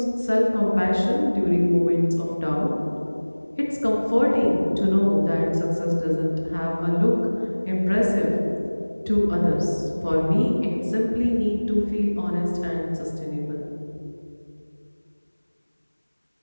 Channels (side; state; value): both; inverted; correlation -1.00